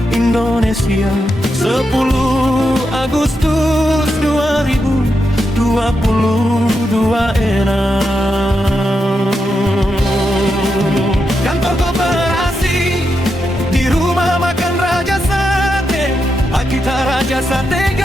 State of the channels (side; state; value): both; normal; correlation 0.85